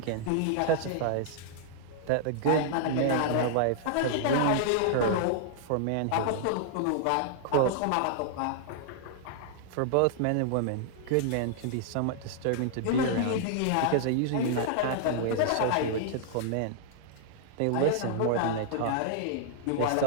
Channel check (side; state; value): both; different; correlation -0.01